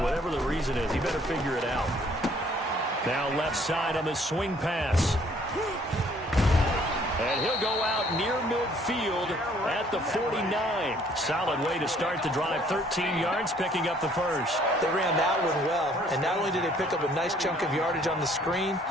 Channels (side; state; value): both; normal; correlation 0.61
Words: whatever the reason is, he better figure it out. Now left side on the swing pass. And he'll go out near midfield at the 49. Solid way to start the drive. 13 yards, picking up the first. They ran that one well. And not only did they pick up a nice chunk of yardage on the screen,